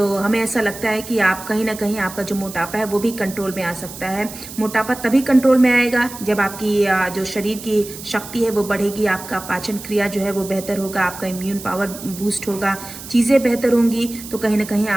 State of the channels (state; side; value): noise; right; hiss, 13 dB below the sound